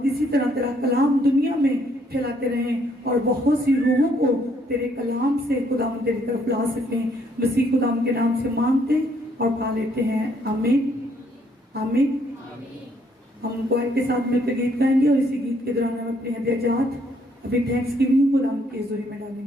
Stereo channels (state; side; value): normal; both; correlation 0.68